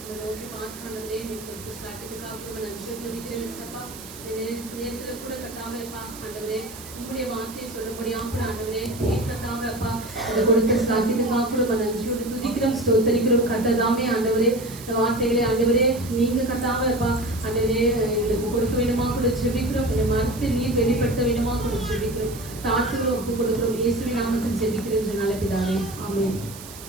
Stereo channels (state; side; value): noise; right; hiss, 15 dB below the sound